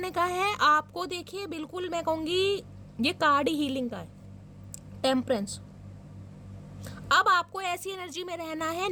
कहा है आपको, देखिए बिल्कुल मैं कहूँगी ये कार्ड ही हीलिंग का है, टेम्परेंस। अब आपको ऐसी एनर्जी में रहना है,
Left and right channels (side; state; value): both; identical; correlation 1.00